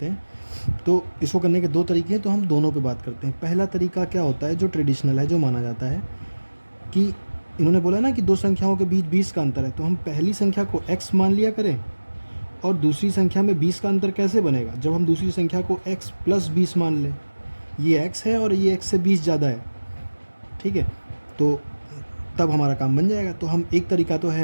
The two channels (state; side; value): inverted; both; correlation -1.00